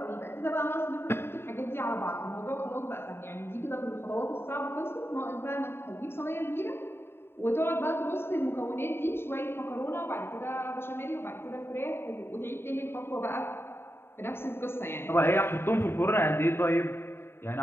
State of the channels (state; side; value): late; right; 0.11 ms